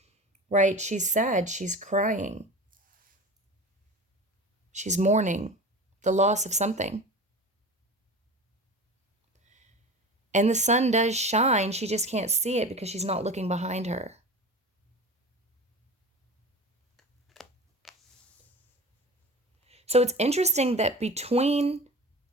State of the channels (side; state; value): both; normal; correlation 0.33